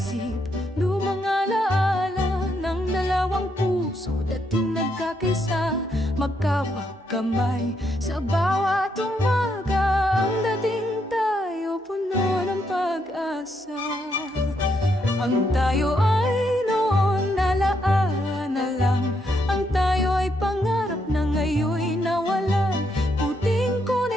lumang alaala ng dalawang puso, dating nagkakaisa, magkawag kamay sa bawat umaga. Ang dating tayo puno ng pag-asa. Ang tayo ay noon alaala na lang. Ang tayo ay pangarap na ngayon'y nawalan. Puting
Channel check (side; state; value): both; normal; correlation 0.77